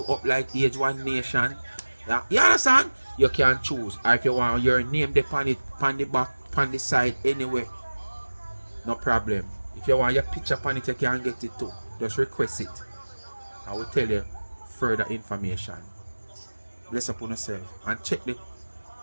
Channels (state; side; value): inverted; both; correlation -1.00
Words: up like Age One Nation? Yeah, you understand? You can choose. Or if you want your name on it, on the back, on the side, anywhere. No problem. If you want your picture on it, you can get it too. Just request it. I will tell you further information. Bless upon yourself. And check the